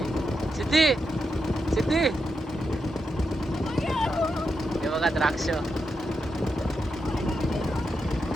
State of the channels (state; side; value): normal; both; correlation 0.85